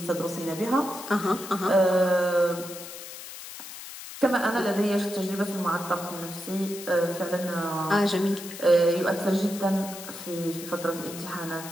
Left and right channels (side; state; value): left; noise; hiss, 12 dB below the sound